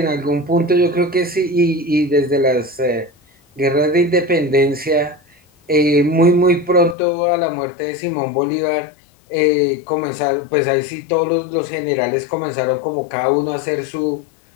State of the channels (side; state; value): right; drops out; at 7.0 s